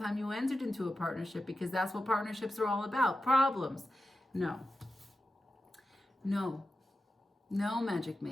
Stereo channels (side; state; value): both; normal; correlation 0.92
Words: you entered into a partnership, because that's what partnerships are all about, problems. No. No. No, magic